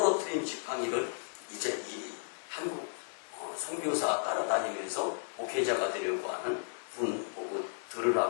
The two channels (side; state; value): right; silent; digital silence